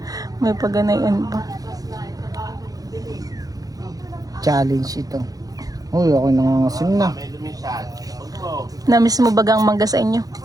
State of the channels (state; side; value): late; left; 0.18 ms